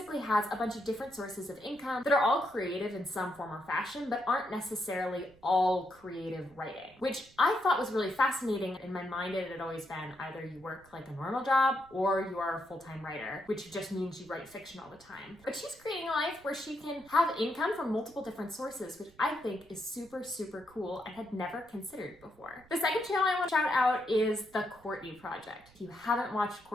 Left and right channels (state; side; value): noise; right; rumble, 27 dB below the sound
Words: has a bunch of different sources of income that are all creative in some form or fashion, but aren't necessarily all creative writing, which I thought was really fascinating. In my mind, it had always been either you work like a normal job or you are a full-time writer, which just means you write fiction all the time. But she's creating a life where she can have income from multiple different sources, which I think is super, super cool and had never considered before. The second channel I want to shout out is the Courtney Project. If you haven't watched